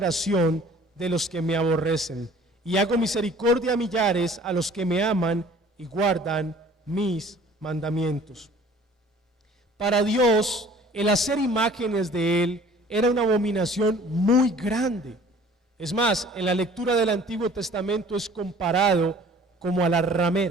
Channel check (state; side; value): normal; both; correlation 0.51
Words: de los que me aborrecen. Y hago misericordia a millares, a los que me aman y guardan mis mandamientos. Para Dios, el hacer imágenes de Él era una abominación muy grande. Es más, en la lectura del Antiguo Testamento es comparado como a la